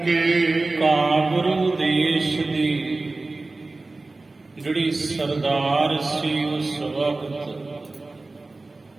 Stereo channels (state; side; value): quieter; left; 3.3 dB